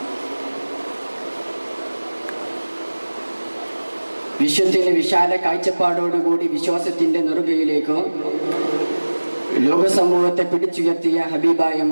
വിശ്വത്തിന് വിശാല കാഴ്ചപ്പാടോടുകൂടി വിശ്വാസത്തിന്റെ നെറുകയിലേക്ക് ലോകസമൂഹത്തെ പിടിച്ചുയർത്തിയ ഹബീബായ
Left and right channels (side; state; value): both; inverted; correlation -1.00